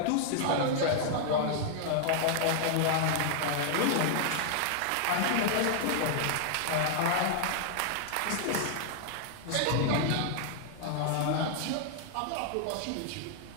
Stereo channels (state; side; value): different; both; correlation 0.00